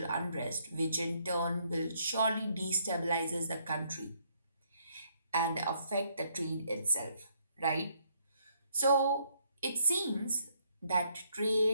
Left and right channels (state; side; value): inverted; both; correlation -0.70